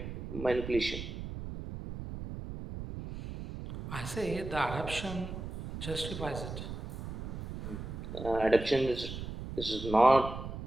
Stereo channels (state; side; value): noise; right; rumble, 8 dB below the sound